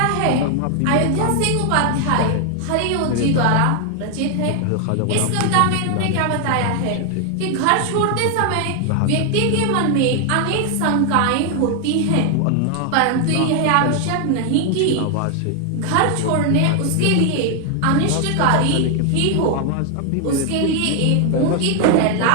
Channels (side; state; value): both; different; correlation 0.00